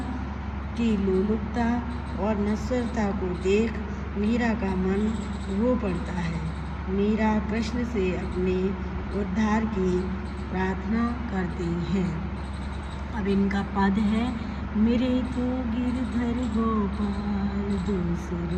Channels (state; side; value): identical; both; correlation 1.00